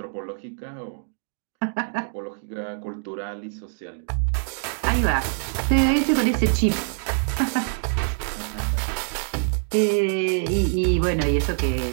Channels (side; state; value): left; silent; digital silence